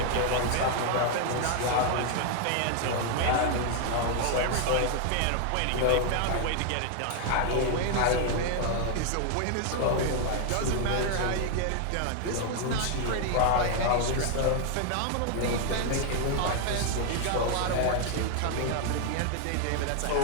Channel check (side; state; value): both; different; correlation 0.00